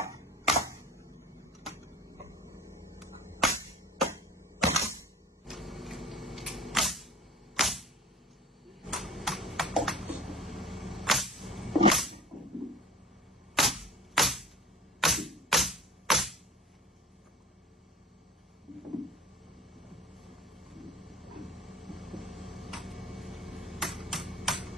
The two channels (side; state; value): both; normal; correlation 0.41